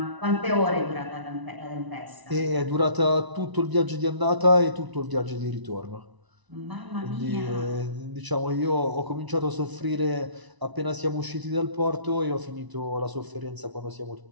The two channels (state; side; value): late; left; 1.0 ms